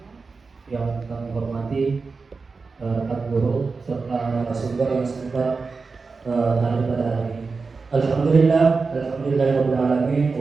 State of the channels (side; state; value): left; quieter; 4.4 dB